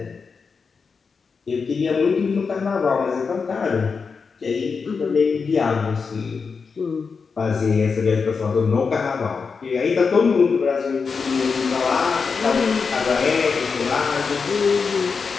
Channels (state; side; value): quieter; right; 5.2 dB